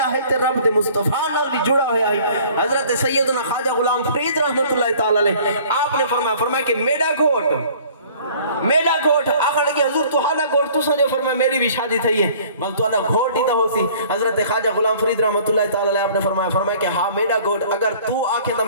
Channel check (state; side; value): inverted; both; correlation -0.52